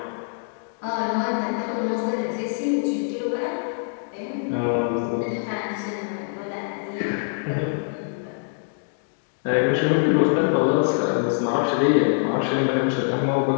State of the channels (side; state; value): right; silent; digital silence